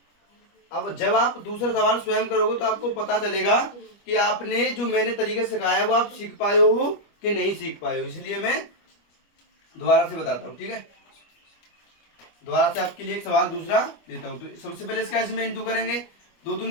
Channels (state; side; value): late; right; 25 ms